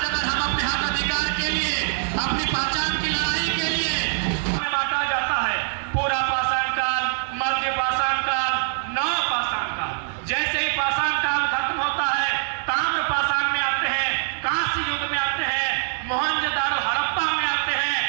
अगर हम अपने हक अधिकार के लिए, अपनी पहचान की लड़ाई के लिए हमें बांटा जाता है, पूरा पाषाण काल, मध्य पाषाण काल, नव पाषाण काल। जैसे ही पाषाण काल खत्म होता है, ताम्र पाषाण में आते हैं, कांस्य युग में आते हैं, मोहनजोदड़ो हड़प्पा में आते हैं,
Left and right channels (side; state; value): left; silent; digital silence